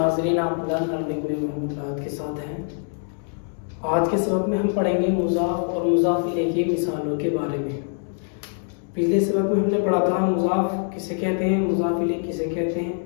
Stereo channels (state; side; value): silent; right; 63 dB below the other